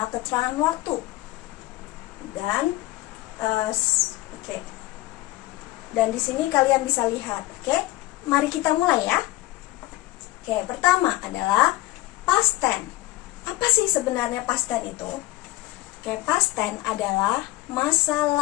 keterangan waktu. Dan Dan di sini kalian bisa lihat, Mari kita mulai ya. Pertama adalah past tense. Apa sih sebenarnya past tense itu? Past tense adalah masa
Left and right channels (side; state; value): right; quieter; 17.9 dB